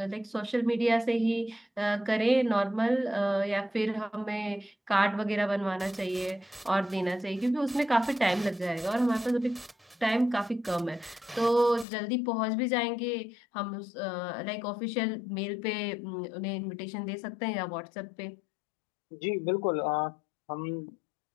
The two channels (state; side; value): drops out; right; at 11.9 s